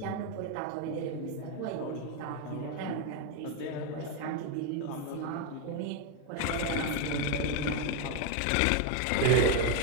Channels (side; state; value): both; different; correlation 0.02